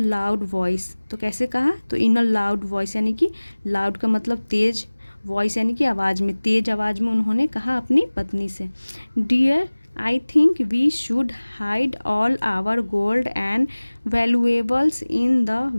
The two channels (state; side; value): inverted; both; correlation -1.00